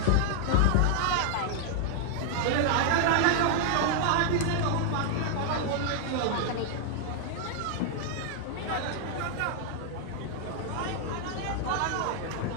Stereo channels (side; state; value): both; different; correlation 0.00